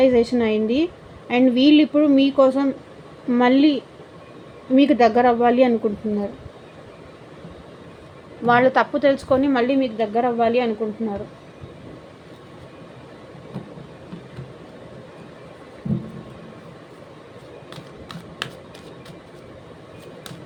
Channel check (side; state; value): both; identical; correlation 1.00